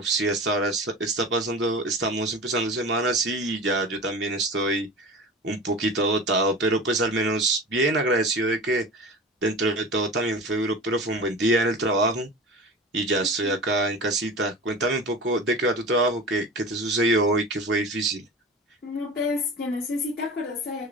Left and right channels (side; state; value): both; normal; correlation 0.34